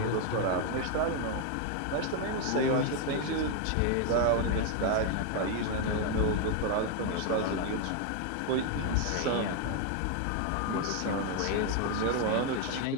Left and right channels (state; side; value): different; both; correlation 0.01